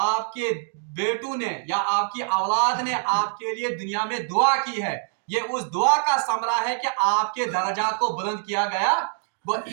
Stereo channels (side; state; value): left; silent; 62 dB below the other